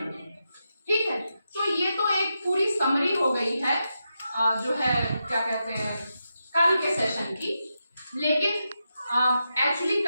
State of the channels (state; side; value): inverted; both; correlation -0.87